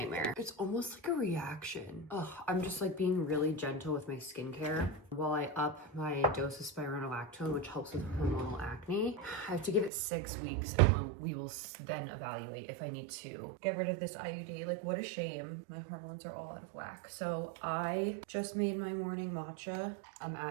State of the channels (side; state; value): left; drops out; at 9.9 s